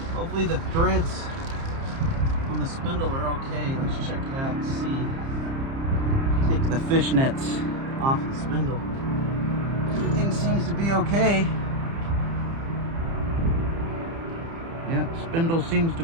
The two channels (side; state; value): left; late; 30 ms